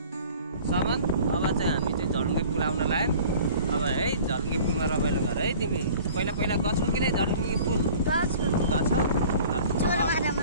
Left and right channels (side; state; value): both; inverted; correlation -0.47